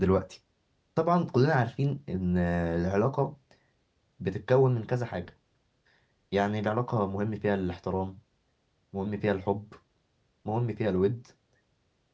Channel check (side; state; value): both; identical; correlation 1.00